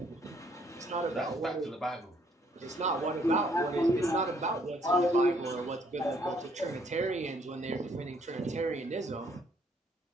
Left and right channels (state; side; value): normal; both; correlation 0.66